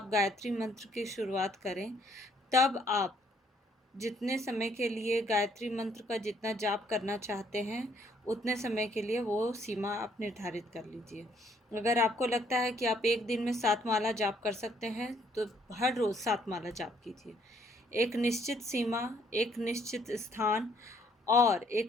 गायत्री मंत्र की शुरुआत करें तब आप जितने समय के लिए गायत्री मंत्र का जितना जाप करना चाहते हैं उतने समय के लिए वो सीमा आप निर्धारित कर लीजिए। अगर आपको लगता है कि आप एक दिन में 7 माला जाप कर सकते हैं तो हर रोज़ 7 माला जाप कीजिए। एक निश्चित सीमा, एक निश्चित स्थान और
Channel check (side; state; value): both; normal; correlation 0.66